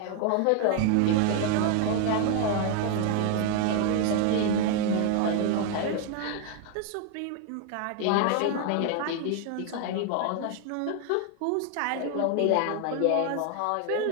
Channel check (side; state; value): both; different; correlation 0.00